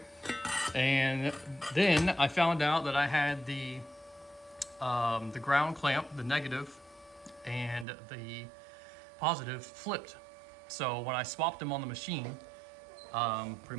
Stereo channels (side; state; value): left; drops out; at 7.9 s